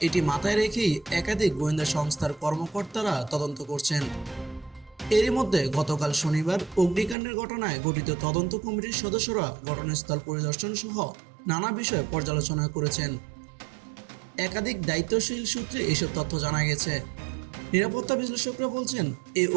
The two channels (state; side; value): drops out; left; at 7.2 s